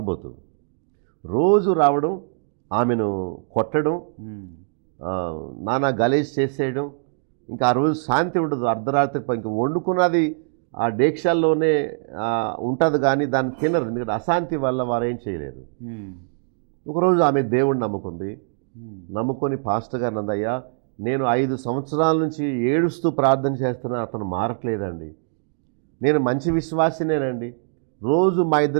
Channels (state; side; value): silent; left; digital silence